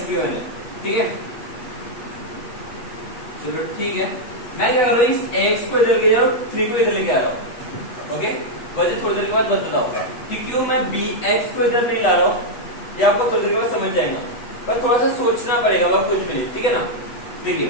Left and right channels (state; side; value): late; right; 8.1 ms